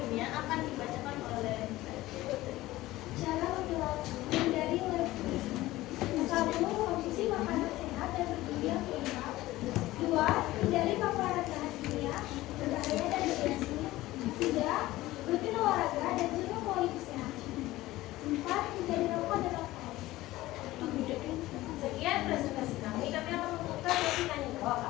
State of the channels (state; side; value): quieter; right; 17.3 dB